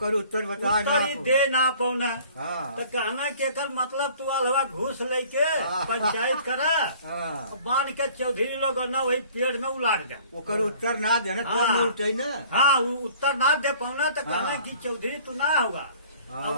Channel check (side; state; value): both; inverted; correlation -0.52